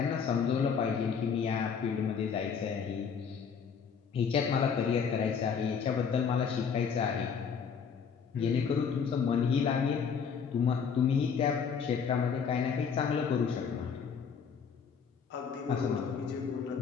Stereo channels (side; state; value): right; quieter; 6.5 dB